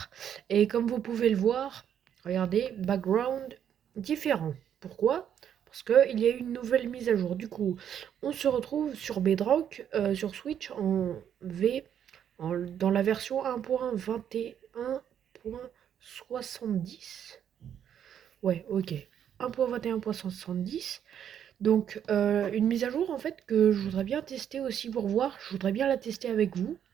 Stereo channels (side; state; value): left; quieter; 9.2 dB